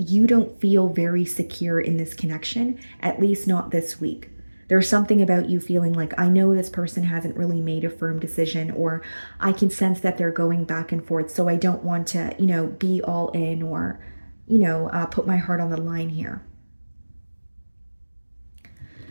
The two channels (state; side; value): inverted; both; correlation -1.00